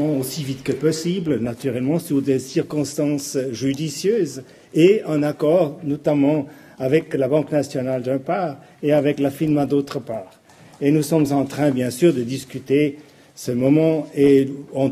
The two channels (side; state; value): both; identical; correlation 1.00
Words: aussi vite que possible, naturellement sous des circonstances judicieuses et en accord notamment avec la Banque nationale d'une part et avec la FINMA d'autre part. Et nous sommes en train, bien sûr, de discuter ce moment et on